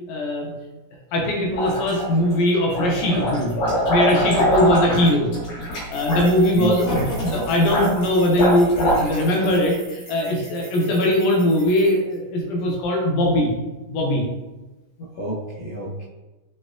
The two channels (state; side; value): late; right; 17 ms